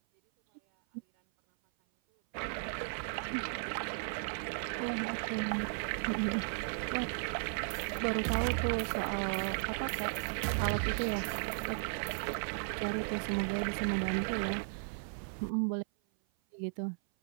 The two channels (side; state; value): left; silent; 54 dB below the other